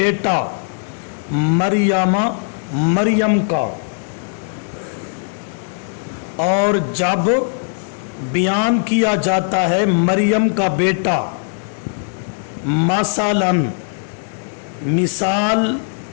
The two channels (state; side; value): silent; right; 62 dB below the other